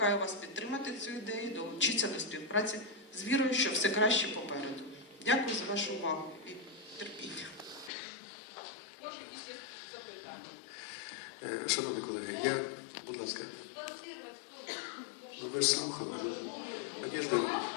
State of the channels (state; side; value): drops out; right; at 7.9 s